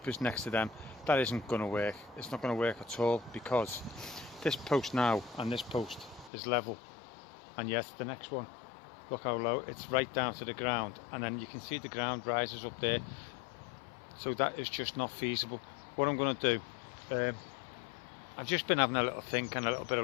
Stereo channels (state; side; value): drops out; right; at 6.3 s